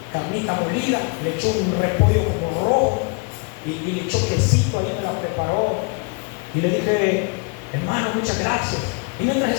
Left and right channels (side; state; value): right; quieter; 33.2 dB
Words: carnita molida, le echó un repollo como rojo, y le echó quesito, ahí me la preparó. Y le dije: hermano, muchas gracias. Y mientras